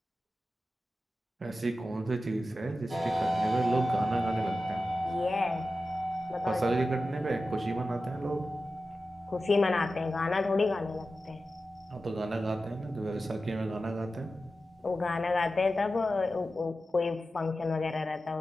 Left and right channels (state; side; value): normal; both; correlation 0.93